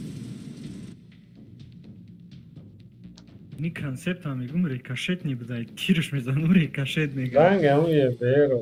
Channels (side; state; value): both; identical; correlation 1.00